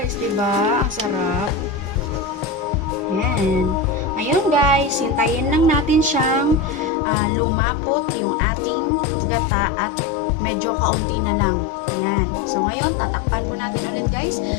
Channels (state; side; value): drops out; right; at 6.9 s